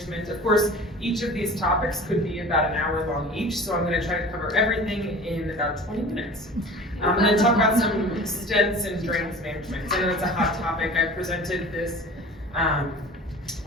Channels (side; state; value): both; normal; correlation 0.41